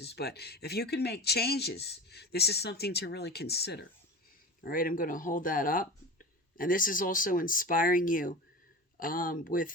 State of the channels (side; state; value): both; normal; correlation 0.31